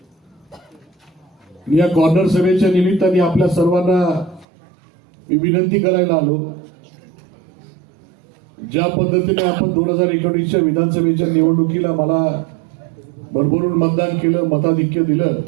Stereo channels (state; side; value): drops out; left; at 4.5 s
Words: या कॉर्नर सभेच्या निमित्ताने आपल्या सर्वांना मी विनंती करायला आलो, ज्या पद्धतीने आपण 2019च्या विधानसभेच्या निवडणुकीला मला भरभरून मतदान केलं, मताधिक्य दिलं,